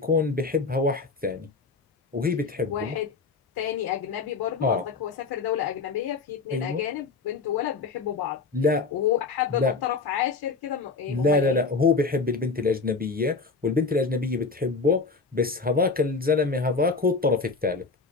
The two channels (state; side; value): quieter; right; 4.4 dB